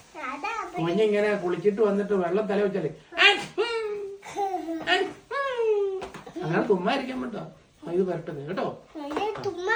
കുഞ്ഞിങ്ങനെ കുളിച്ചിട്ട് വന്നിട്ട് വെള്ളം തല വെച്ചാലേ അങ്ങനെ തുമ്മായിരിക്കാൻ പറ്റോ? ഇത് വരട്ടെ കേട്ടോ.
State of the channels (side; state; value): both; identical; correlation 1.00